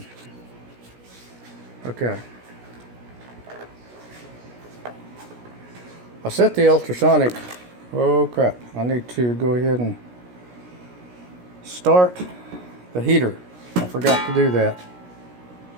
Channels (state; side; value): late; left; 17 ms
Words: Okay. I set the ultrasonic. Oh crap, I need to go ahead and start the heater. I forgot to do that.